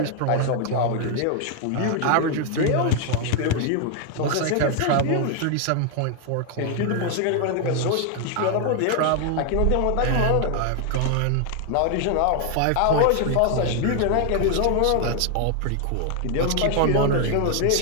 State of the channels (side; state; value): both; different; correlation 0.00